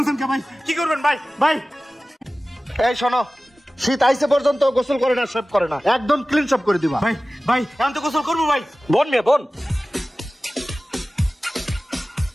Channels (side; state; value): both; normal; correlation 0.97